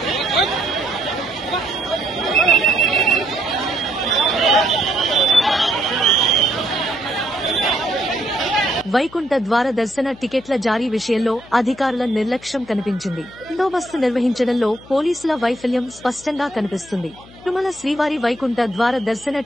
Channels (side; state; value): left; noise; hum, 22 dB below the sound